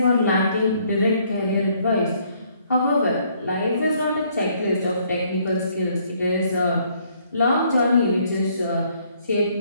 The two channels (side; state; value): both; inverted; correlation -0.66